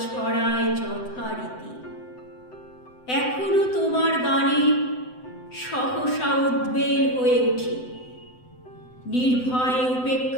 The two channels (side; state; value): right; late; 7.9 ms